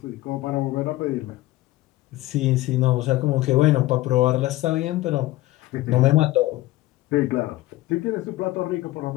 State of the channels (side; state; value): right; quieter; 17.5 dB